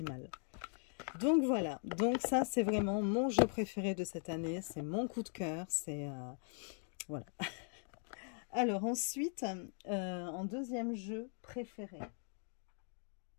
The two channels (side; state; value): right; silent; 51 dB below the other